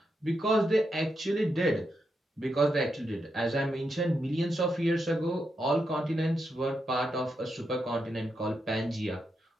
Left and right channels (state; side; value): normal; both; correlation 0.84